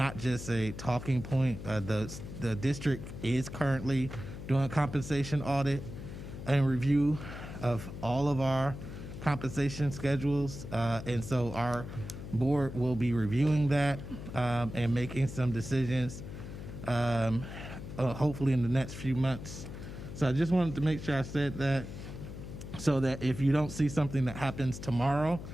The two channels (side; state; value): left; noise; hum, 10 dB below the sound